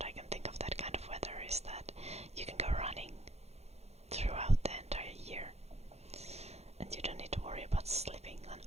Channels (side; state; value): left; late; 0.31 ms